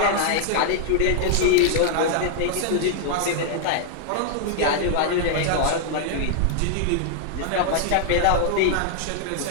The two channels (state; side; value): different; both; correlation -0.01